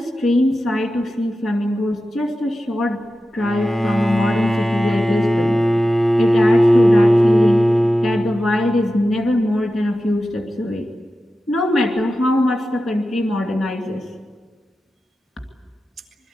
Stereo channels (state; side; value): normal; both; correlation 0.93